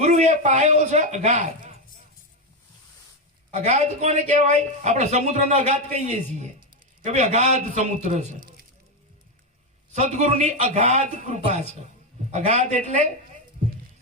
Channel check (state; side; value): normal; both; correlation 0.08